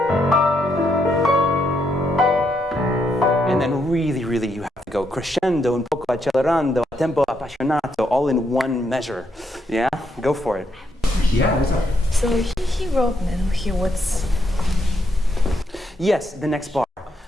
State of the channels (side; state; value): both; normal; correlation 0.78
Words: then really you have to go crescendo, un poco accelerando, a tempo appassionato, all in one measure. Yeah? Go for it. Yeah, what's up? So he wrote, what's... Yes, the next bar.